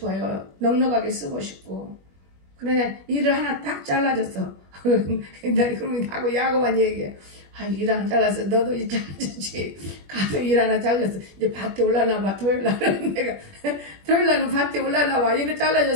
넉넉하게 쓰고 싶고. 그래 일을 하나 딱 잘라줬어. 그러면 하고 야고만 얘기해. 일 하나 잘랐어. 너도 일 잘라줬지. 가서 일 하나 잘랐어. 이제 밭에 올라나 봐. 토요일날은 내가 토요일날은 밭에 올라나 봐. 일을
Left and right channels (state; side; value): late; left; 21 ms